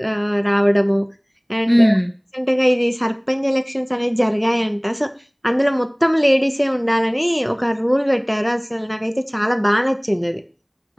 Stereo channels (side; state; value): both; identical; correlation 1.00